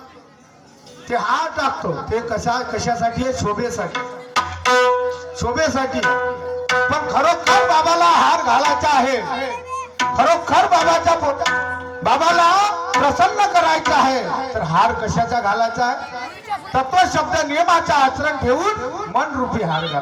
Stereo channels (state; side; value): identical; both; correlation 1.00